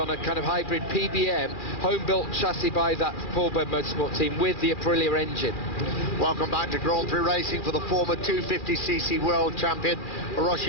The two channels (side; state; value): right; late; 2.4 ms